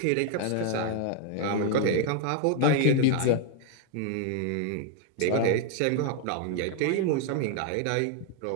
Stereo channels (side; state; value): both; different; correlation 0.00